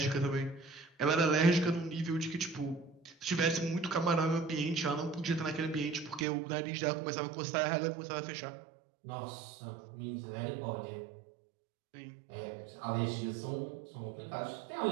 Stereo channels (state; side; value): drops out; left; at 6.2 s